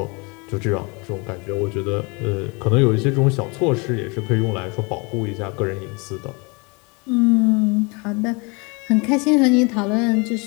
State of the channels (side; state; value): right; quieter; 29.8 dB